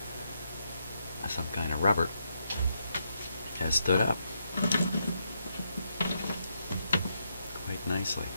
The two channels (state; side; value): inverted; both; correlation -0.80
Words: some kind of rubber. has stood up quite nicely.